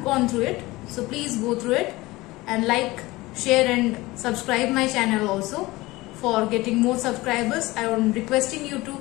gone through it, so please go through it and like, share and subscribe my channel also. For getting more subscribers, I am requesting you to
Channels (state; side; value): quieter; right; 20.2 dB